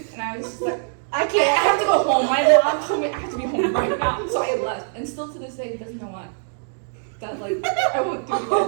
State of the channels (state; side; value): silent; left; digital silence